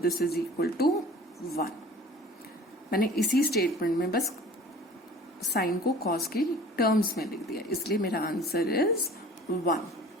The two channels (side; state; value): both; normal; correlation 0.45